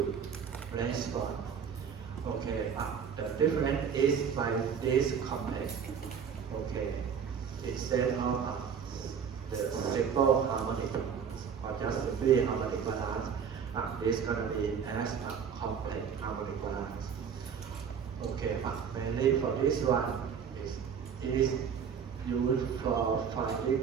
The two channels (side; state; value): left; quieter; 7.1 dB